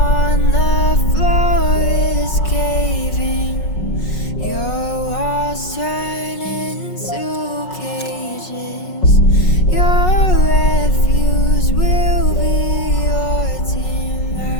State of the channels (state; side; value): late; right; 5.4 ms